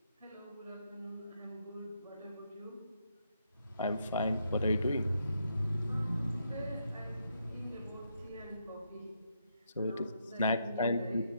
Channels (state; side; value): inverted; both; correlation -0.78